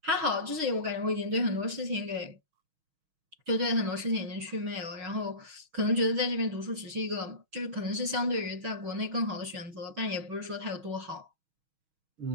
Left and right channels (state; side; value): late; left; 6.3 ms